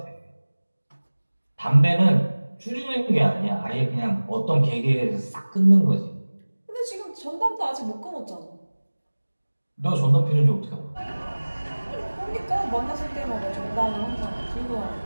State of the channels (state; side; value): inverted; both; correlation -1.00